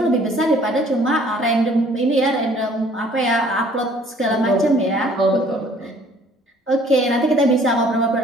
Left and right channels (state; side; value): normal; both; correlation 0.57